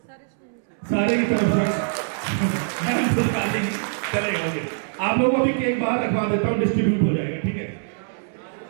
सारे की तरफ से चलेगा, ओके। आप लोगों को भी केक बाहर रखवा देता हूँ, डिस्ट्रीब्यूट हो जाएगा, ठीक है?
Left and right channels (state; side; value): silent; left; 63 dB below the other